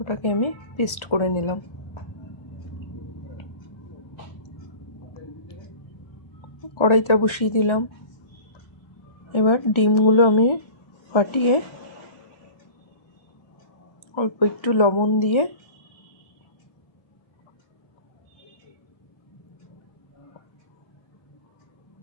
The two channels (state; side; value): late; right; 1.4 ms